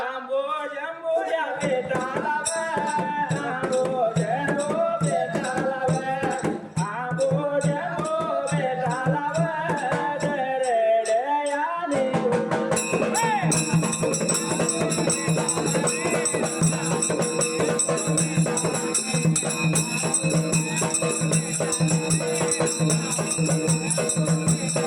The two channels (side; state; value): both; identical; correlation 1.00